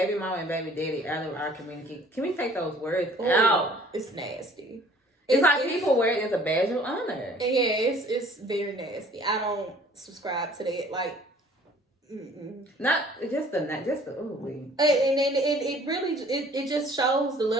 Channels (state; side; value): normal; both; correlation 0.53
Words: mama and baby daddy out of our community. Can we take those words out? It's nasty. It's like people wear it as a badge of honor. Yeah, it's very nasty. I don't subscribe to that. Like, not just the and it really it just shows the